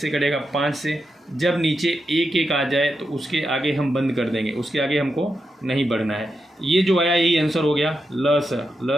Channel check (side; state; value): both; normal; correlation 0.86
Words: कटेगा, 5 से। जब नीचे 1 1 आ जाए तो उसके आगे हम बंद कर देंगे, उसके आगे हमको नहीं बढ़ना है। ये जो आया यही आंसर हो गया ल